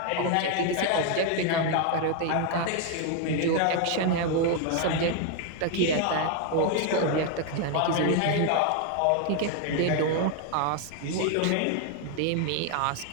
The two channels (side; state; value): both; different; correlation 0.01